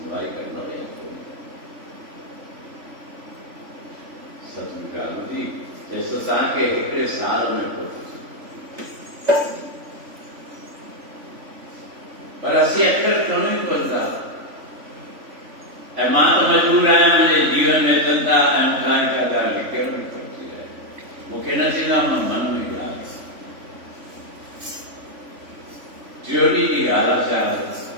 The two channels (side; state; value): left; late; 3.5 ms